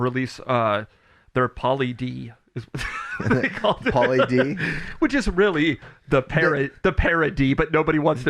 their Poly D, is what they called it. Poly D? Which is really the parody, but nobody wants to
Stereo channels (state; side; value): identical; both; correlation 1.00